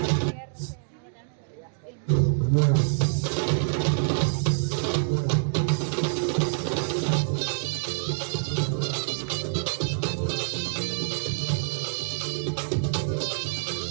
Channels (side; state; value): left; silent; digital silence